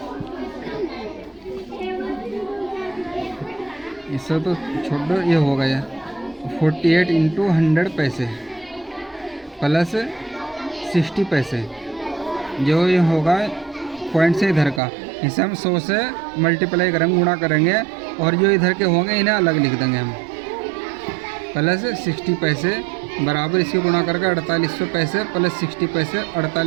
इससे तो छोड़ो, ये हो गया 48 इंटू 100 पैसे प्लस 60 पैसे। जो ये होगा पॉइंट से इधर का, इसे हम 100 से मल्टीप्लाई करेंगे, गुणा करेंगे, और जो इधर के होंगे इन्हें अलग लिख देंगे हम। प्लस 60 पैसे बराबर इसके गुणा करके 4800 पैसे प्लस 60 पैसे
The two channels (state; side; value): drops out; left; at 14.8 s